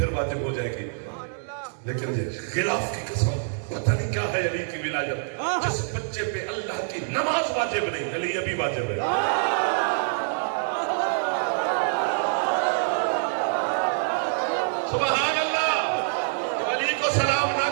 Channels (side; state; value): left; silent; digital silence